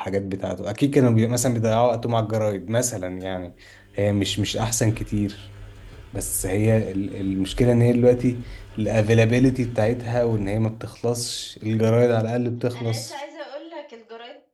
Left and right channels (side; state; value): both; identical; correlation 1.00